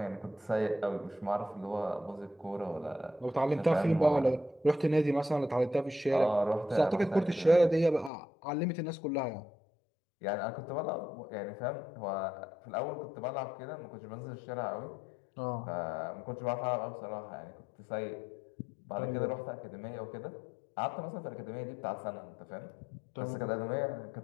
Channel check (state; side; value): drops out; right; at 8.1 s